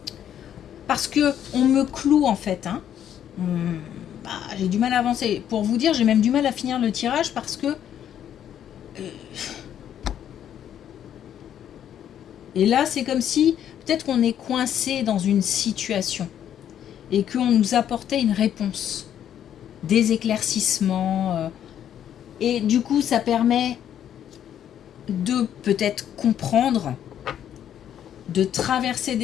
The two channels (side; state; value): right; quieter; 10.0 dB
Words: parce que on me cloue en fait, hein. J'ai du mal à avancer. Pour vous dire, j'ai même du mal à finir le tirage parce que et là c'est comme si peut-être qu'on est coincé dans une situation et qu'on nous apportait une réponse, des éclaircissements, et du coup ça permet de peut-être comprendre, de traverser